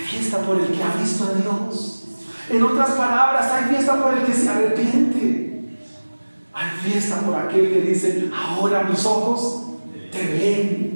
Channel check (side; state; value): both; inverted; correlation -1.00